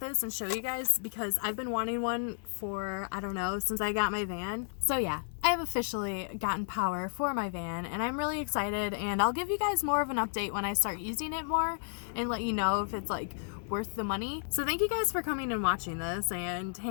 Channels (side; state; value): right; silent; digital silence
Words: and show you guys because I've been wanting one for, I don't know, since I got my van. So yeah, I have officially gotten power for my van and I'm really excited, and I'll give you guys more of an update when I start using it more and let you know if it's like worth the money. So thank you guys for coming and watching this and